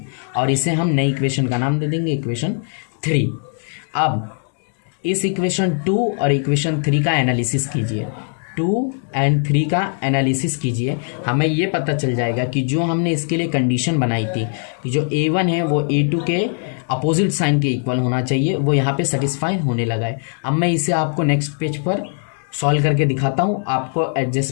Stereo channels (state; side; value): silent; right; 64 dB below the other